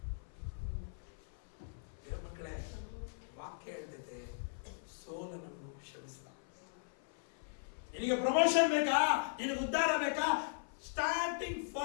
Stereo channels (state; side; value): silent; right; 52 dB below the other